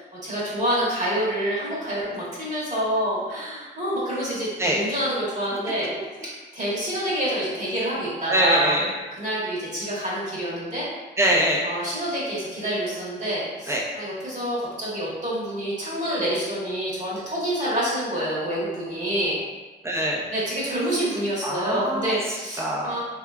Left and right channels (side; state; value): both; normal; correlation 0.19